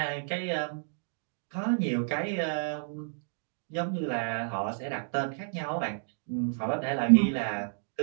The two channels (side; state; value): left; silent; digital silence